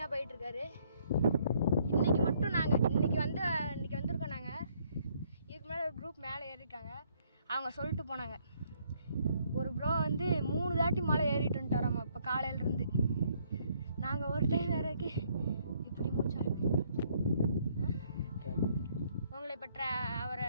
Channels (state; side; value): inverted; both; correlation -0.67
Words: போயிட்டுருக்காரு. இன்றைக்கி மட்டும் நாங்கள் இன்றைக்கி வந்திருக்கோம். நாங்கள் இதுக்கு மேலே ஒரு குரூப் மேலே ஏறியிருக்காங்க. அவங்க சொல்லிட்டு போனாங்க, ஒரு ப்ரோ வந்து 3 தாட்டி மலை ஏறிட்டு வந்துட்டாராம்மா இப்போ காலையிலேருந்து. நாங்கள் ஒரு டைம் வேறக்கு இப்படி மூச்சாகுது. உங்களை இப்போ அவரை